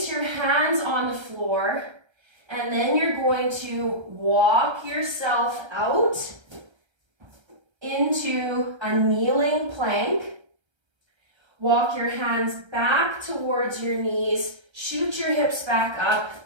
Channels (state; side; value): late; left; 1.3 ms